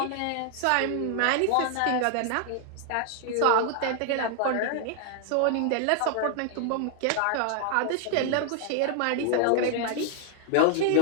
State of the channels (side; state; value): both; different; correlation 0.00